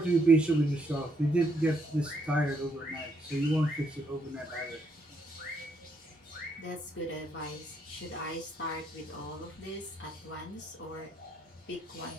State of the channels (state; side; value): normal; both; correlation 0.73